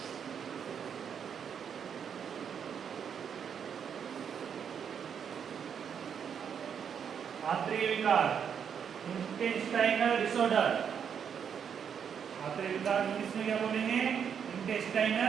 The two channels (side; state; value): left; quieter; 7.6 dB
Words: आंतरिक विकार, इंटेस्टाइनल डिसऑर्डर, आंतरिक विकार इंग्लिश में क्या बोलेंगे?